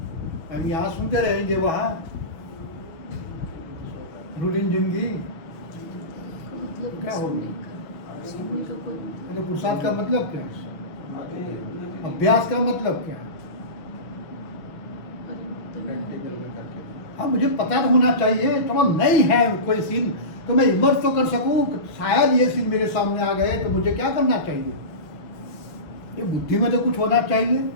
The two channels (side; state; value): right; late; 6.3 ms